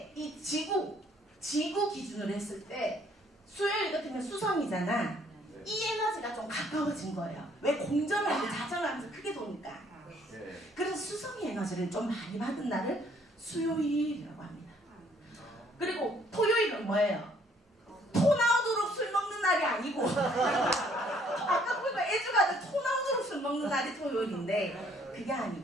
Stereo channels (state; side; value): normal; both; correlation 0.63